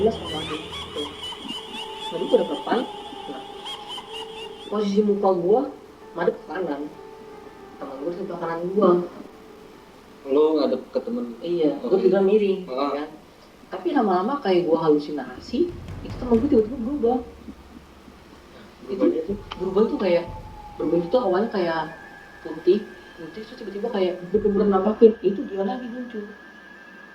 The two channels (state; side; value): identical; both; correlation 1.00